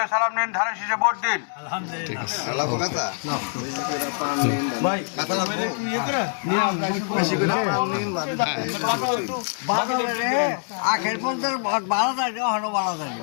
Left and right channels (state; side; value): silent; right; digital silence